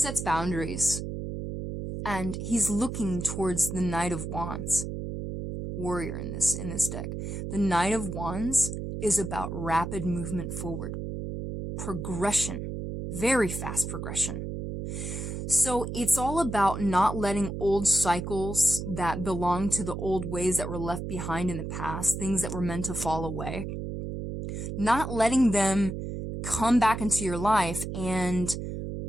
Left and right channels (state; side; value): noise; right; hum, 5 dB below the sound